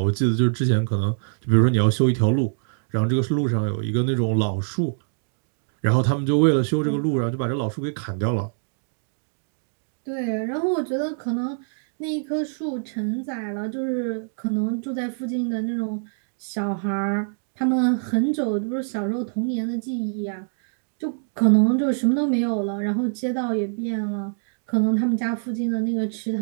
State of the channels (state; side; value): silent; left; digital silence